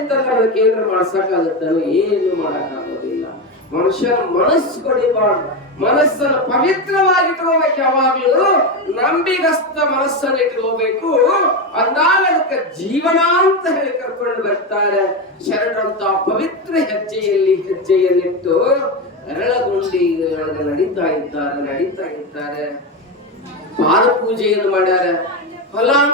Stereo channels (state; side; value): normal; both; correlation 0.15